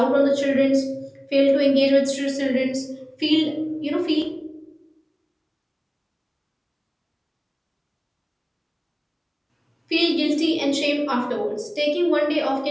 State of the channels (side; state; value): both; identical; correlation 1.00